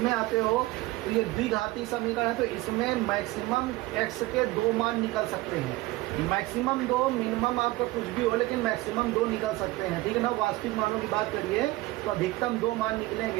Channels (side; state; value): left; quieter; 19.6 dB